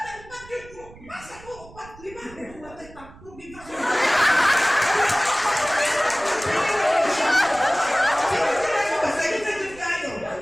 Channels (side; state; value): right; noise; rumble, 21 dB below the sound